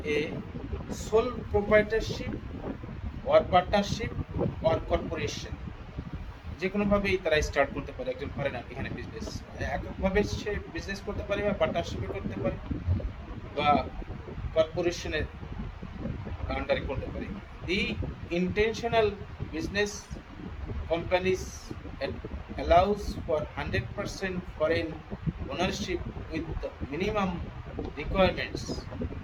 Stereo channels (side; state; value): both; identical; correlation 1.00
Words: a sole proprietorship or partnership or corporation। যে কোনোভাবেই তারা স্টার্ট করতে পারে একজন ফরেনার এখানে বিজনেস, এককভাবে সে বিজনেস করতে পারে বা পার্টনারশিপে করতে পারে বা কর্পোরেশনের আন্ডারে করতে পারে। The intentional business companies allows for 100% foreign ownership with the minimum requirements